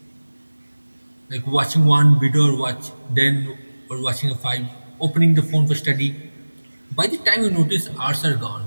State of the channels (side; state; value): both; inverted; correlation -1.00